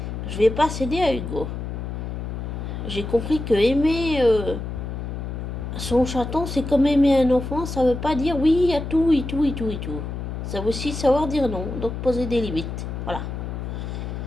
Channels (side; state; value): left; noise; hum, 6 dB below the sound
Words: Je vais pas céder à Hugo. J'ai compris que aimer son chaton, c'est comme aimer un enfant. Ça veut pas dire oui à tout et tout et tout et tout. Ça veut aussi savoir dire non. Donc poser des limites. Voilà.